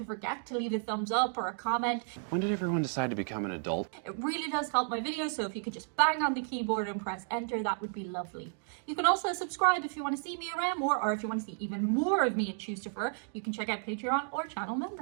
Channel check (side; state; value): left; silent; 56 dB below the other